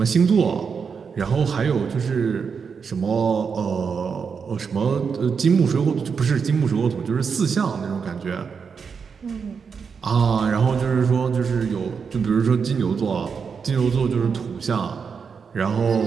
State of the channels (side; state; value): left; quieter; 6.0 dB